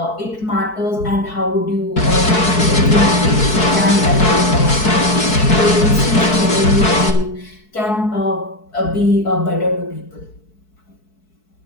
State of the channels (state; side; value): late; right; 4.6 ms